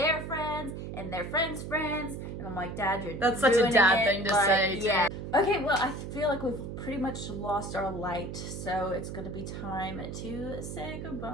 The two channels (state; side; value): noise; right; hum, 7 dB below the sound